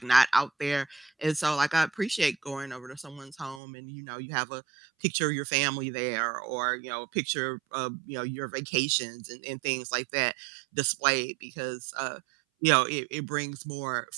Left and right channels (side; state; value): left; drops out; at 3.6 s